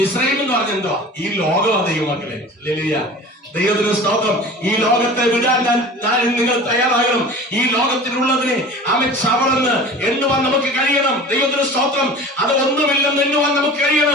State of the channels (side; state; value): both; normal; correlation 0.39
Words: എന്ന് പറഞ്ഞ എന്തോ? ഈ ലോകമാണ് ദൈവമക്കളെ. ഹല്ലേലൂയ. ദൈവത്തിന് സ്തോത്രം. ഈ ലോകത്തെ വിടാൻ നിങ്ങൾ തയ്യാറാകണം. ഈ ലോകത്തിലുള്ളതിനെ ചവറന്ന് എണ്ണുവാൻ നമുക്ക് കഴിയണം. ദൈവത്തിന് സ്തോത്രം. അത് ഒന്നുമില്ലെന്ന് എണ്ണുവാൻ നമുക്ക്